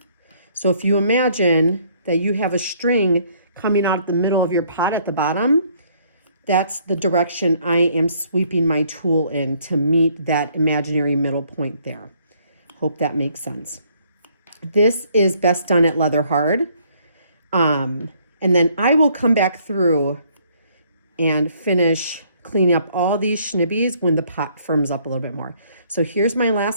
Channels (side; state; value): both; inverted; correlation -0.64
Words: So if you imagine that you have a string coming out of the middle of your pot at the bottom, that's the direction I am sweeping my tool in to meet that imaginary middle point there. Hope that makes sense. This is best done at leather hard. And then I will come back through and finish cleaning up all these schnibbies when the pot firms up a little bit more. So here's my